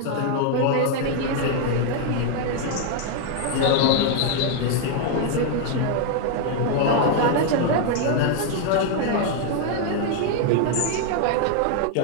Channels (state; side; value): different; both; correlation 0.00